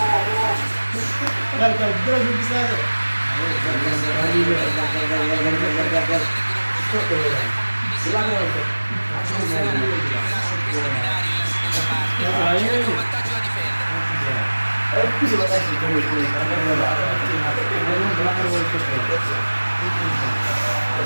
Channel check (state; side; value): inverted; both; correlation -1.00